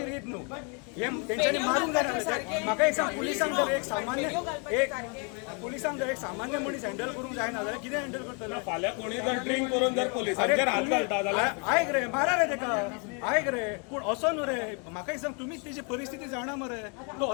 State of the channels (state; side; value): quieter; right; 35.6 dB